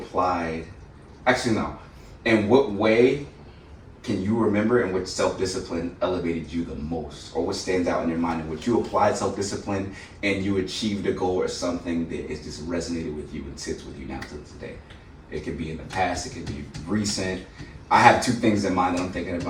Actually, no. In what way can you remember in which self-discipline elevated you the most, or what stands out in your mind in which you applied self-discipline and you achieved a goal or something that is just resonated with you and sits with you now to this day? It could be in the past, it could be recent. I have two things in mind that I'm thinking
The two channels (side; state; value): both; identical; correlation 1.00